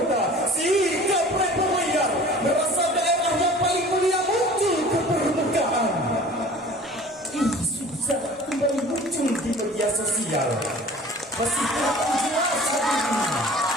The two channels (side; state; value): both; normal; correlation 0.44